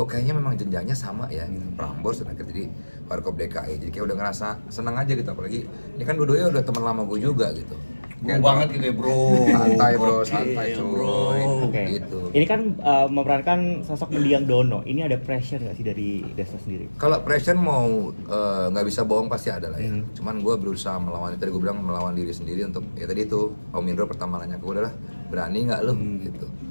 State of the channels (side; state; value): both; inverted; correlation -1.00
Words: kayaknya memang jenjangnya sama ya, gitu. Prambors dan akhirnya jadi Warkop DKI. Jadi kayak udah ngerasa seneng aja gitu, apalagi ini kan dua-duanya udah teman lama gue juga gitu. Kayak banget gitu ya bro. Santai bro, santai cuy. Oke. Gitu. Ini kan memerankan sosok mendiang Dono. Ini ada pressure nggak sih dari Desta sendiri? Kalau pressure mau nggak bisa bohong pasti ada lah ya. Cuman gue berusaha melawan, tadi gue bilang melawan diri sendiri untuk ya tadi itu Om Indro pertama nanya ke gue adalah berani nggak lo gitu.